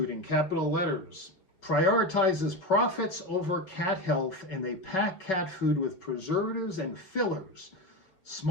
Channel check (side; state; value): right; late; 5.5 ms